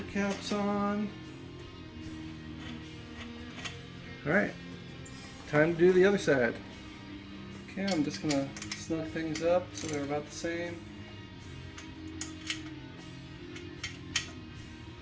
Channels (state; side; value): identical; both; correlation 1.00